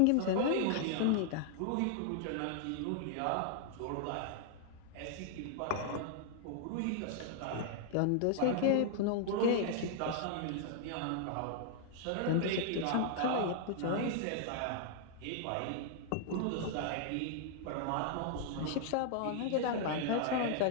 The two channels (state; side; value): different; both; correlation -0.01